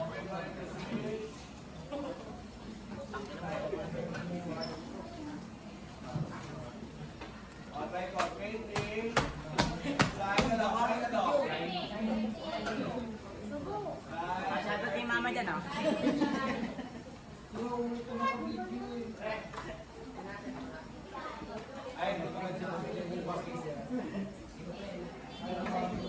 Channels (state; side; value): identical; both; correlation 1.00